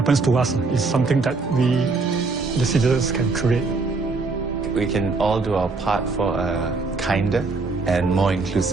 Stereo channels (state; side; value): quieter; left; 3.9 dB